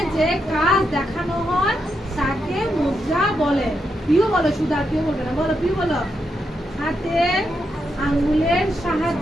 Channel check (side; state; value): both; normal; correlation 0.83